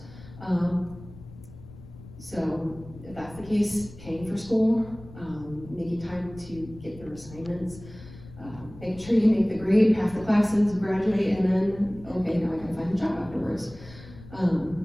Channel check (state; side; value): noise; left; rumble, 18 dB below the sound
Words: So if that's the case, paying for school, making time to get your assignments, making sure you make the grade, pass the classes, graduate, and then, okay, now I gotta find a job afterwards.